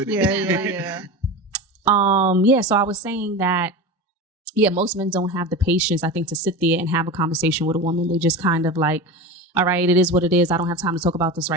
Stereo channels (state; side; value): normal; both; correlation 0.27